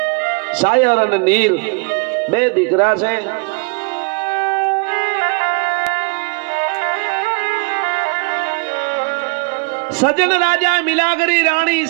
સાયર અને નીર બે દીકરા છે. સજન રાજા, મિલાગરી રાણી,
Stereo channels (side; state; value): left; quieter; 32.3 dB